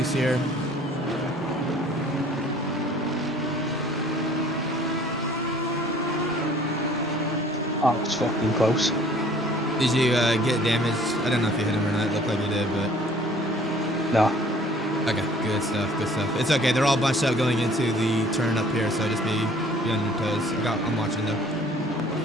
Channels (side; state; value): both; normal; correlation 0.53